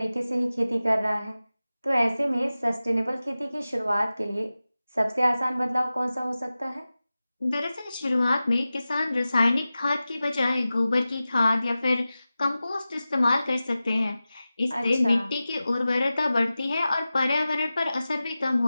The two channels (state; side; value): inverted; both; correlation -0.95